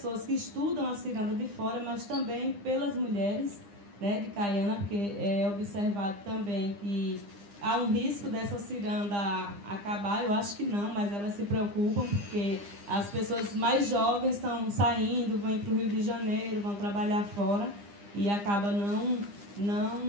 que estudam a ciranda de fora, mas também pelas mulheres, né, de Caiana, porque é observado também que há um risco dessa ciranda acabar. Eu acho que não, mas elas se preocupam porque as pessoas mais jovens estão saindo, vão para o Rio de Janeiro, vão trabalhar fora e acaba não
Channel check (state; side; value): late; left; 9.9 ms